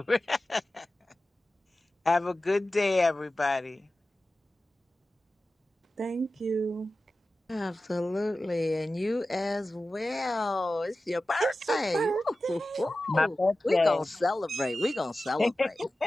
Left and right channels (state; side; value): normal; both; correlation 0.95